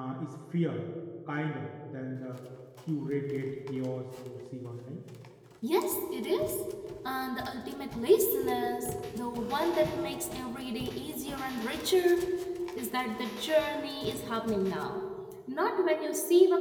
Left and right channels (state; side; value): identical; both; correlation 1.00